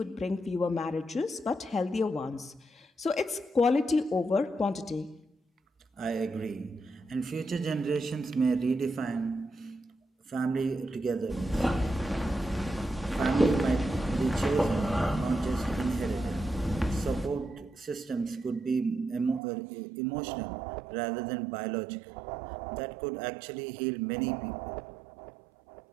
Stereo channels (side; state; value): left; drops out; at 19.4 s